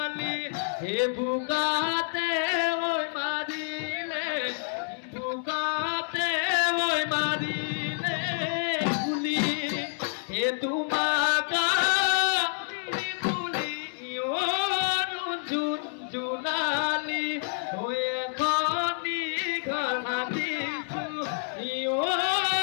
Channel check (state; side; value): silent; right; 59 dB below the other